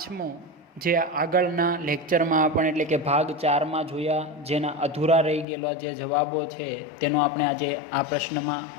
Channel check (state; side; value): drops out; right; at 5.5 s